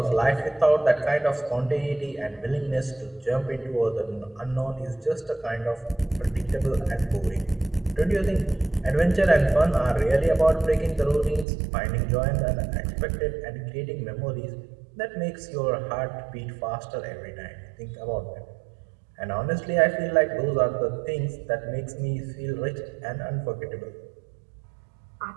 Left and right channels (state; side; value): drops out; left; at 11.5 s